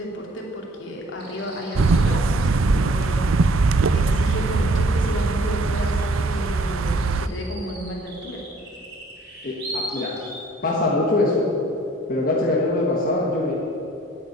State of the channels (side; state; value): both; normal; correlation 0.58